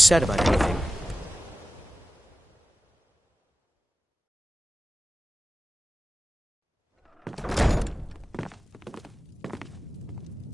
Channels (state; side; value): normal; both; correlation 0.96